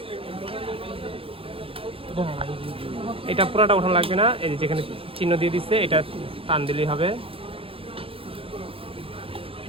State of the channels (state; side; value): late; left; 0.27 ms